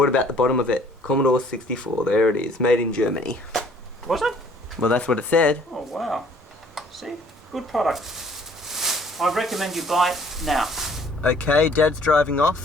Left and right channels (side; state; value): both; normal; correlation 0.57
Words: about the bottom of it? Commodore 64, there it is, made in Germany. Was it? Well, that's what it said. Oh, wow. See? Good product. I recommend you buy it now. Okay, Dad's driving